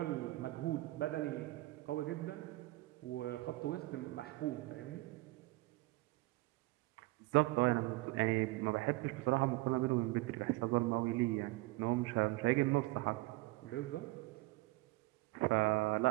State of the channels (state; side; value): quieter; left; 20.9 dB